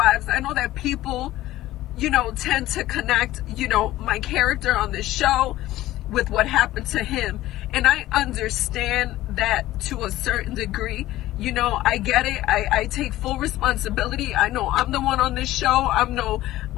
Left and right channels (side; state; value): right; quieter; 15.7 dB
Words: I know that people, tend to connect, my character on this show with what happened to him. And I understand that to a certain degree. I get it. I take full responsibility. I know I'm the one on this show. I'm